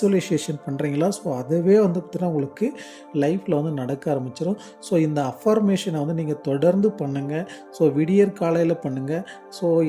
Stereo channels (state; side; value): identical; both; correlation 1.00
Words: பண்ணுறீங்களா, ஸோ அதுவே பார்த்திங்கன்னா உங்களுக்கு லைஃப்பில் நடக்க ஆரம்பிச்சிடும். ஸோ இந்த அஃபர்மேஷனை நீங்கள் தொடர்ந்து பண்ணுங்கள். ஸோ விடியற் காலையில் பண்ணுங்கள். ஸோ